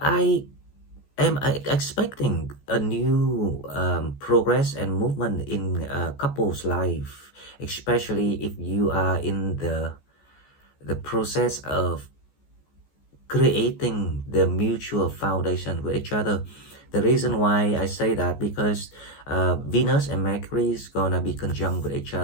am expecting a new progress and movement in a couple's life, especially if you are in the process of creating the mutual foundation with each other. The reason why I say that because Venus and Mercury is gonna be conjunct with each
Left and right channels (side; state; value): right; late; 14 ms